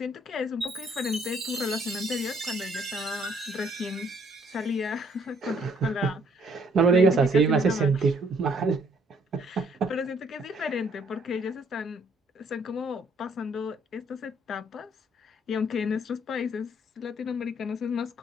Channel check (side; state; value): both; normal; correlation 0.65